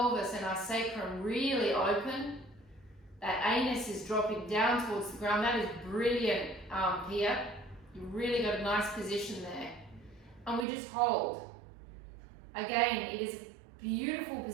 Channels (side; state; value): left; drops out; at 10.7 s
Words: and our sacrum really open. That anus is dropping down towards the ground. That is brilliant, Pia. You've really got a nice position there. And we just hold. Again, it is a beautiful